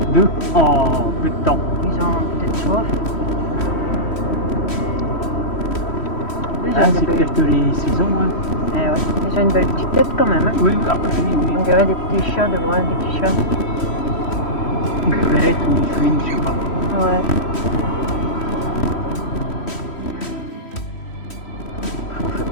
2 en peu de temps. Ils ont peut-être soif. Ah, c'est peut-être les saisons. Hein. Eh ouais. Ils ont une belle petite tête quand même. Hein. Oui, oui. On dirait des petits chats de loin, des petits chats. Une belette ou une fouine, je sais pas. Ouais. On fait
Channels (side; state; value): right; late; 3.1 ms